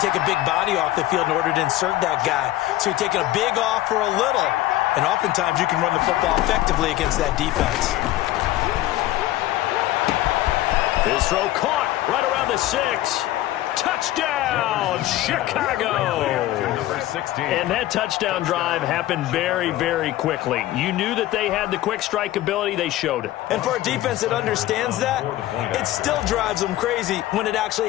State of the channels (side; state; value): right; quieter; 15.2 dB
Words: a big body off the field in order to insert that guy. So you're taking a big off for a little. And oftentimes you can run the football effectively against that defense. His throw caught right around the 6. Touchdown, Chicago. And that touchdown drive happened very, very quickly. You knew that they had the quick strike ability. They showed it. And for a defense that understands that, it still drives them crazy when it actually